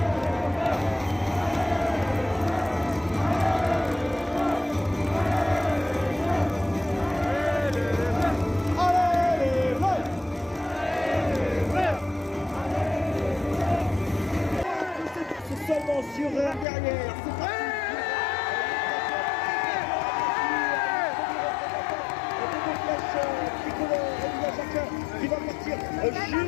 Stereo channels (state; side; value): drops out; right; at 16.7 s